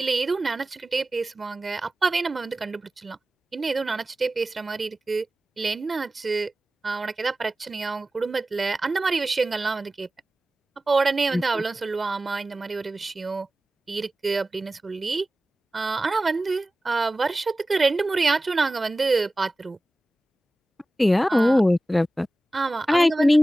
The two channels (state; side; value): normal; both; correlation 0.96